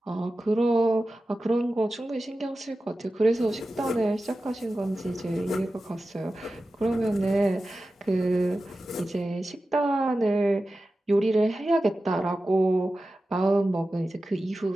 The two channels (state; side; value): normal; both; correlation 0.94